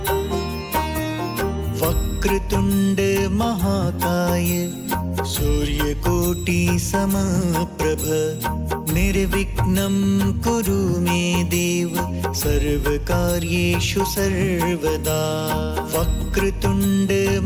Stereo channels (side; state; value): both; identical; correlation 1.00